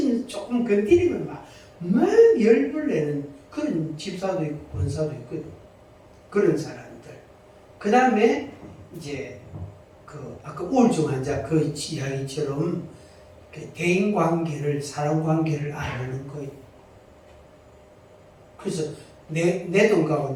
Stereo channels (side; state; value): both; identical; correlation 1.00